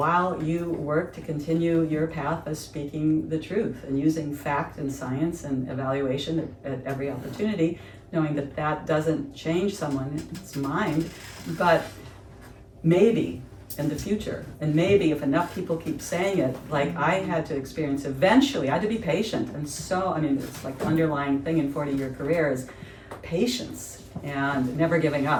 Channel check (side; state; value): both; identical; correlation 1.00